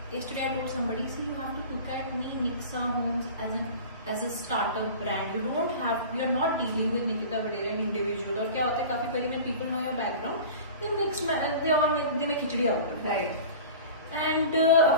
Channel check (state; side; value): inverted; both; correlation -0.37